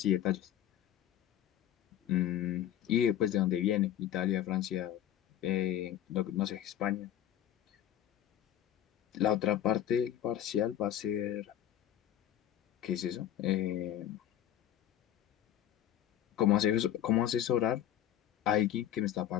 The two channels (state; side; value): quieter; right; 11.2 dB